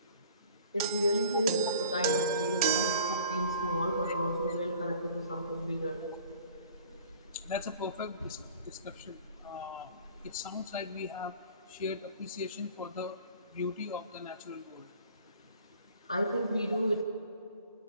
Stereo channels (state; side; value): inverted; both; correlation -0.48